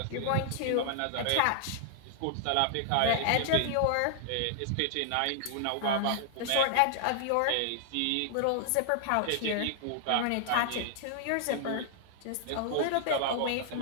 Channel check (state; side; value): different; both; correlation -0.01